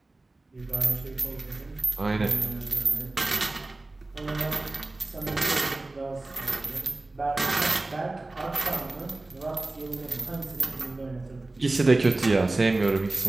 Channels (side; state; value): left; quieter; 3.0 dB